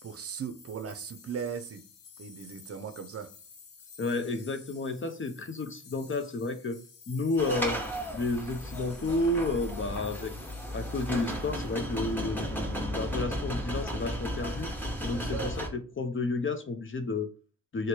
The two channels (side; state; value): both; normal; correlation 0.41